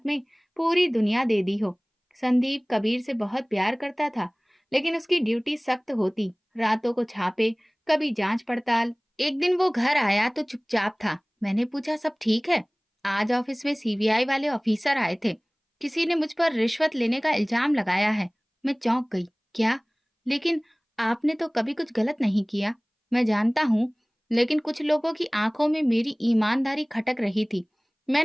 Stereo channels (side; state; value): both; identical; correlation 1.00